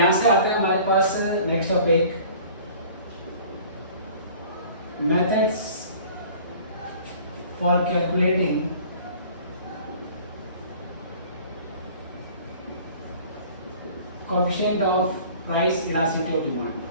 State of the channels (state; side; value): inverted; both; correlation -0.48